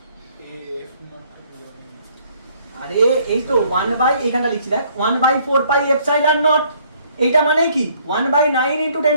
আরে এই তো 1 বাই এইখানটা লিখছি দেখ 1/4 পাই এপসাইলন নট এইটা মানে কি 1/9 into 10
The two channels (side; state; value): both; inverted; correlation -0.63